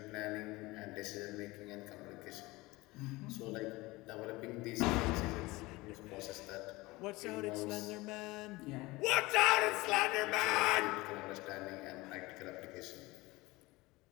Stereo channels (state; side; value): quieter; right; 21.4 dB